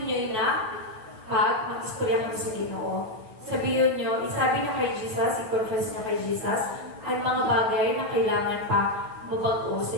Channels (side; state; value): left; late; 9.2 ms